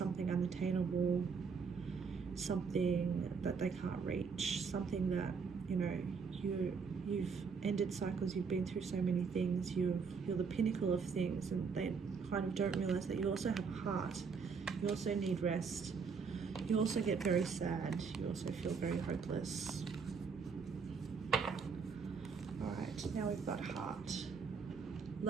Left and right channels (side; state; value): left; quieter; 5.5 dB